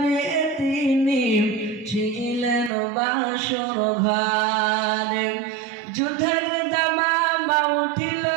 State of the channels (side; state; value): left; drops out; at 2.7 s